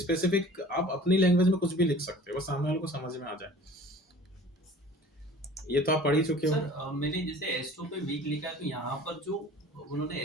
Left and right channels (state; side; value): normal; both; correlation 0.45